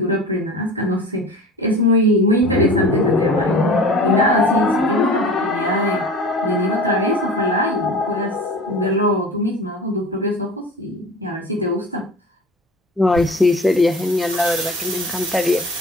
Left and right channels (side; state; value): both; normal; correlation 0.38